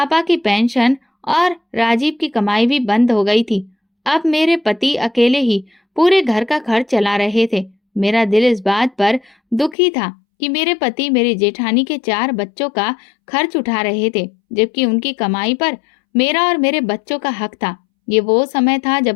की पेंशन और राजीव की कमाई भी बंद हो गई थी। अब मेरे पति अकेले ही पूरे घर का खर्च चला रहे थे। मेरा दिल इस बात पर दुखी था कि मेरे पति मेरी जेठानी के 4 बच्चों का खर्च उठा रहे थे, जबकि उनकी कमाई पर मेरा और मेरे बच्चों का हक था। ये वो समय था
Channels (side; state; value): right; drops out; at 9.8 s